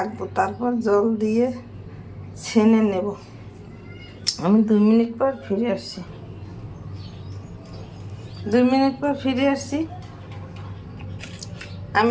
তারপর জল দিয়ে ছেনে নেব। আমি 2 মিনিট পর ফিরে আসছি। 2 মিনিট পর ফিরে আসছি।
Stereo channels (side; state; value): both; identical; correlation 1.00